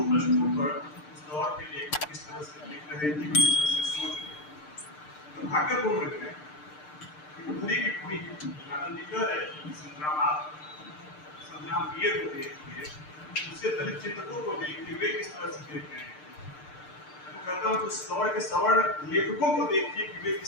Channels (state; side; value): late; right; 6.7 ms